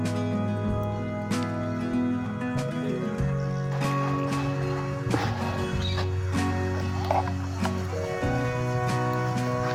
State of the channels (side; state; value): both; identical; correlation 1.00